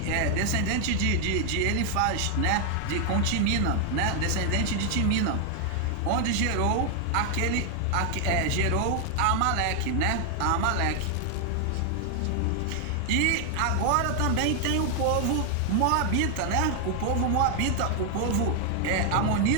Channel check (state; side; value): different; both; correlation 0.00